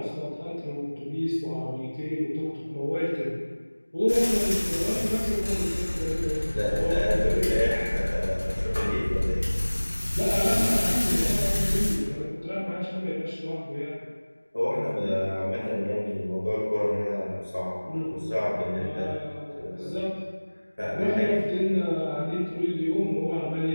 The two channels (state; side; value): inverted; both; correlation -1.00